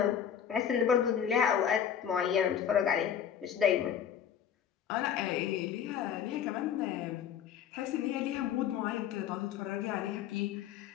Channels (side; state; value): right; quieter; 8.8 dB